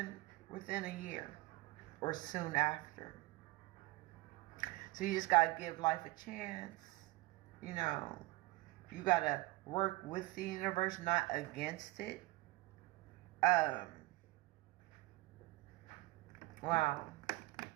within a year or soon after. So you just got to give life a chance. You know, you got to work with the universe, not against it. Wow.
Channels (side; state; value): left; quieter; 21.0 dB